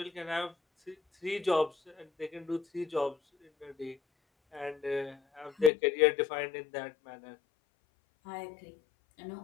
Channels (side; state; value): right; drops out; at 5.7 s